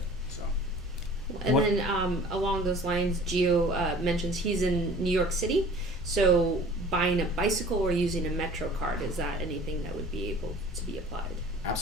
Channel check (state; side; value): normal; both; correlation 0.47